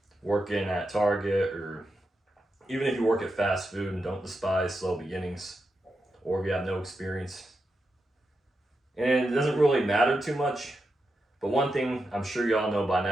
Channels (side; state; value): both; normal; correlation 0.87